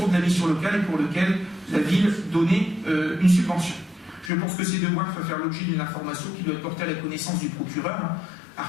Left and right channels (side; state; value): right; drops out; at 4.3 s